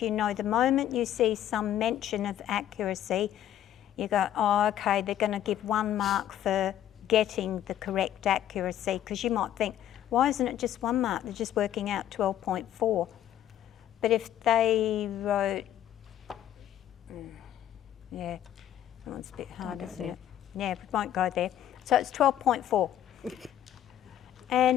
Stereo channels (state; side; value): quieter; right; 11.3 dB